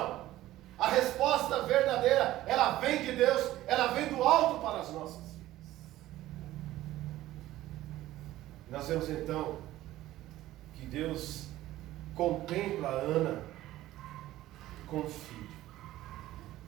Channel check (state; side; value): quieter; left; 15.2 dB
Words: A resposta verdadeira, ela vem de Deus, ela vem do alto para as nossas vidas. Nós vemos então que Deus contempla Ana com um filho.